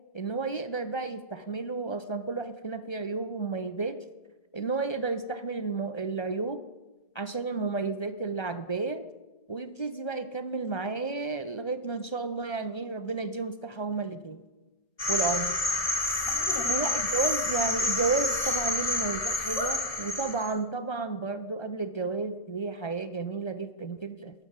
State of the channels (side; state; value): right; late; 1.7 ms